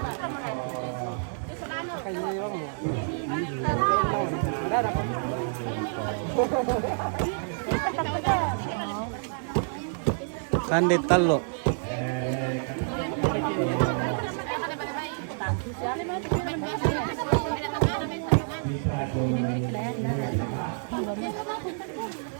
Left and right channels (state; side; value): silent; left; 59 dB below the other